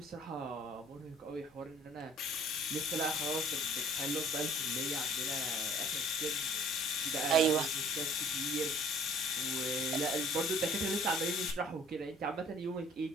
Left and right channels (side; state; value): both; normal; correlation 0.53